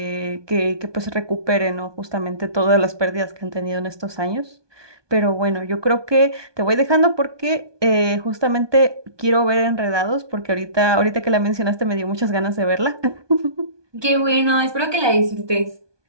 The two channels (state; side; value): late; left; 1.2 ms